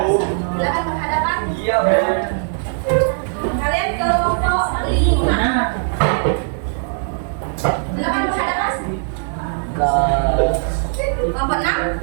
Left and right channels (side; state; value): left; silent; digital silence